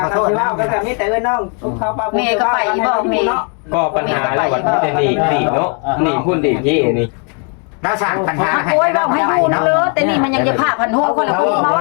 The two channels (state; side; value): quieter; right; 39.3 dB